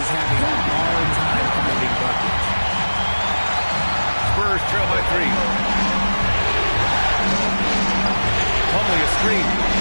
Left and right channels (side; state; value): both; inverted; correlation -1.00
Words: having a hard time finding buckets. Spurs trail by 3. Plumlee a screen.